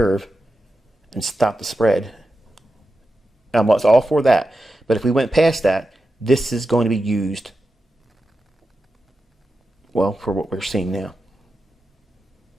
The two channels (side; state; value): both; normal; correlation 0.90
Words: and stop the spread. I was all for that. But if we went past that, this is going to be used, well, for what we're seeing now.